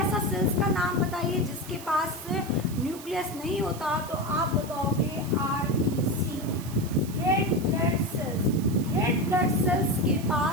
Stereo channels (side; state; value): right; noise; hiss, 15 dB below the sound